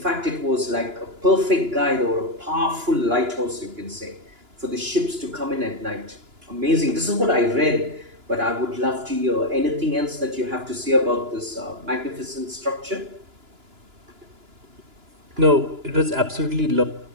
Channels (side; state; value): left; late; 2.9 ms